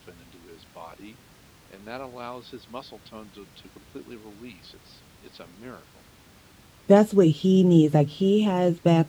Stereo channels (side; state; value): both; identical; correlation 1.00